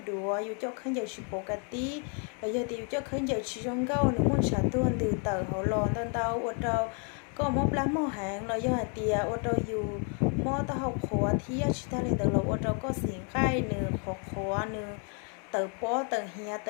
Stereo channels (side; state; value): right; quieter; 39.6 dB